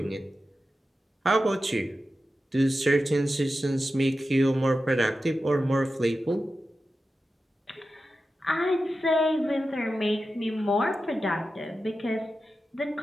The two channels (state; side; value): normal; both; correlation 0.92